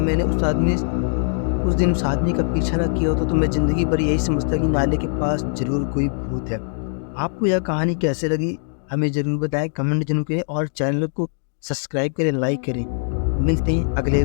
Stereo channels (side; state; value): right; silent; digital silence